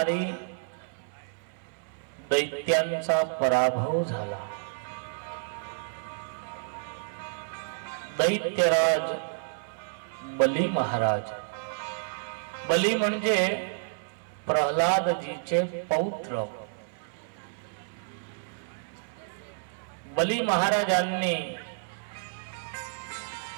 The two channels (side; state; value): left; silent; 56 dB below the other